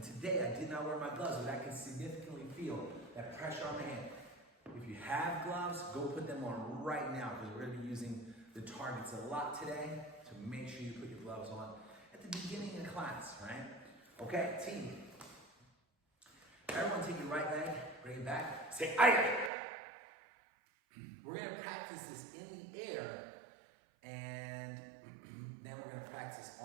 today I did not wear my gloves, but I can significantly feel that pressure on my hand. If you have gloves, go put them on right now, because we're going to be using the targets a lot today, to make sure you put your gloves on at the beginning of class, right? Okay, team. Everyone take your right leg, bring it back, say, aye. We're going to practice this in the air, and then we're going to practice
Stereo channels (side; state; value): left; drops out; at 19.5 s